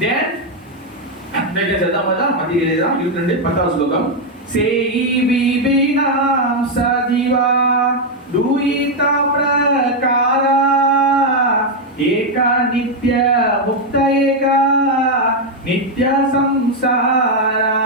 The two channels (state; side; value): normal; both; correlation 0.01